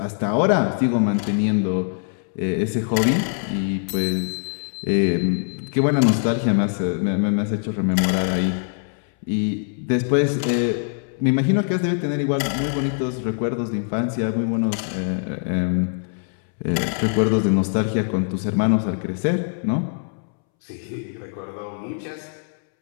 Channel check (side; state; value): right; silent; 64 dB below the other